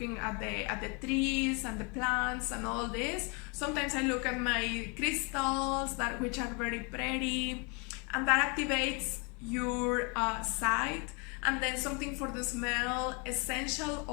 at the trees and the plants and all this. Sometimes I look at my crystals that which are very pretty, and that activates your sight. And then something for the smell. Essential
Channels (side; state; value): right; quieter; 32.3 dB